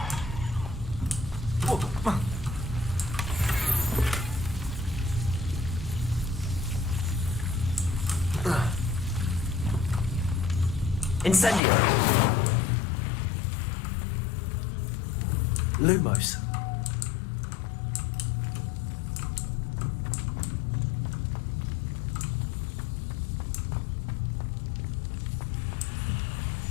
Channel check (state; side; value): drops out; right; at 11.6 s